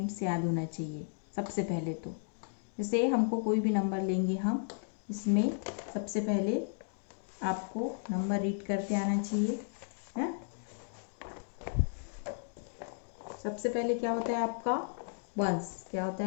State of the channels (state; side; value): silent; right; digital silence